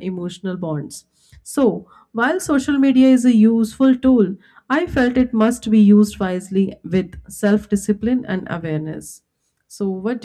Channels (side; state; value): both; identical; correlation 1.00